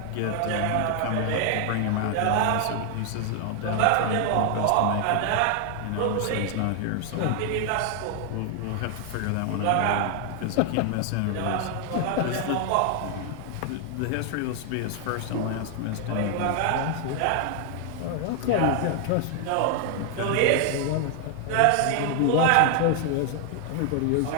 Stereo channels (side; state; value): both; different; correlation 0.00